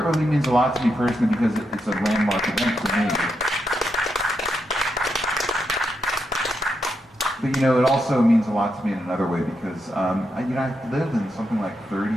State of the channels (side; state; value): both; normal; correlation 0.83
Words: means a lot to me personally because it's a landmark event for me. But it also means a lot to me in another way because I've lived in something like